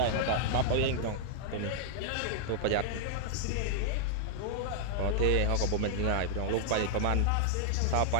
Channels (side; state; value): both; different; correlation -0.01